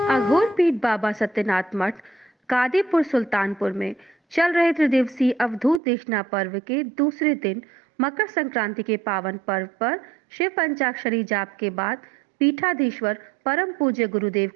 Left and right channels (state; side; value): drops out; left; at 5.8 s